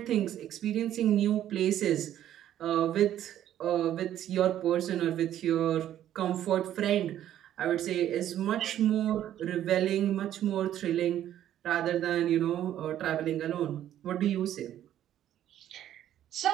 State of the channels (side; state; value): left; quieter; 11.6 dB